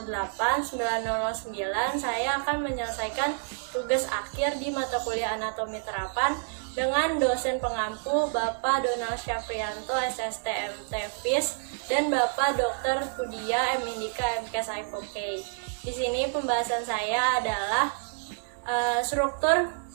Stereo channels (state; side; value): silent; left; 59 dB below the other